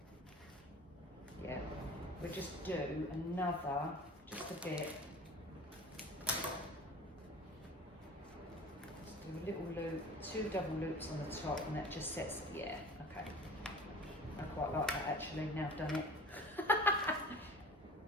Yeah. We'll just do another, just a bit. Just do a little loop, 2 double loops on the top, and that just sets, yeah, okay. I quite like that actually, now I've done it.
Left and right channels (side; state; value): both; normal; correlation 0.41